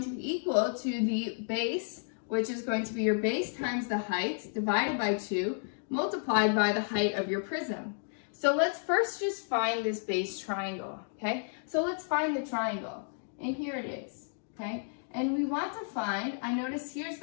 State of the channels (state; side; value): silent; right; digital silence